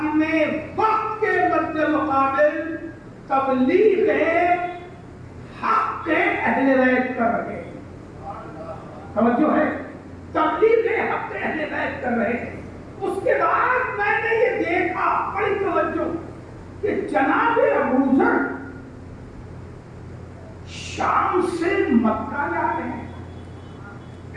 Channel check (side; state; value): both; identical; correlation 1.00